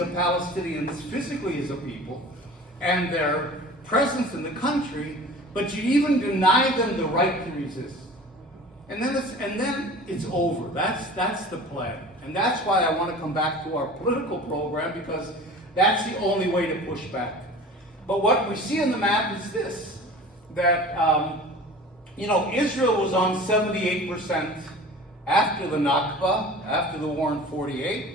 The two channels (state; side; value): normal; both; correlation 0.40